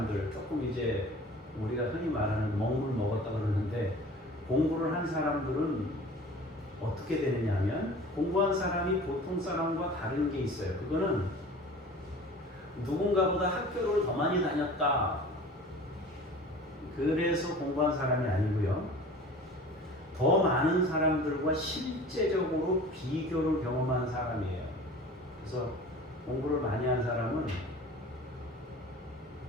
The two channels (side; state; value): both; normal; correlation 0.42